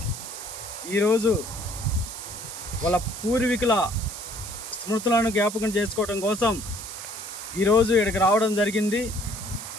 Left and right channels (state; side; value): noise; right; hiss, 10 dB below the sound